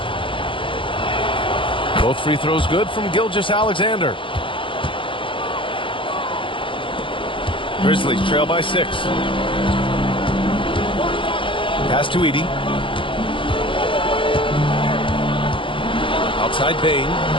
Both free throws good from Gilgeous-Alexander. Grizzlies trail by 6. Pass to Edey. Outside Bain.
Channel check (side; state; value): right; late; 0.25 ms